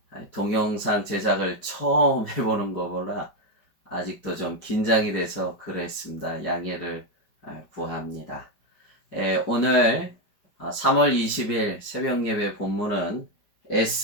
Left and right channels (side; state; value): right; late; 5.1 ms